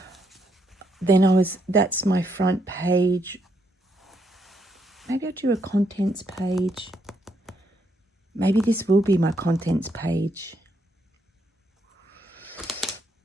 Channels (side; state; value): both; normal; correlation 0.76